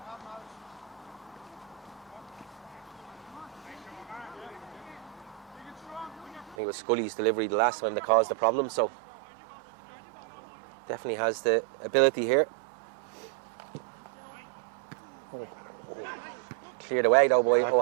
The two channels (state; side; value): drops out; left; at 6.6 s